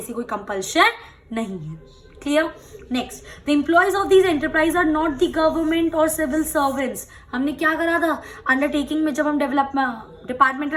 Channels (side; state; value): both; identical; correlation 1.00